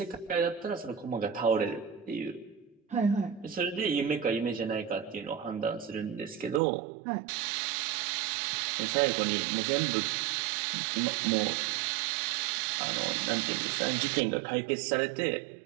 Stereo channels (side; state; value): left; drops out; at 6.6 s